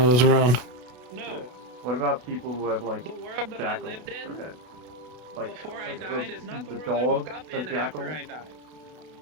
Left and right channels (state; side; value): late; left; 32 ms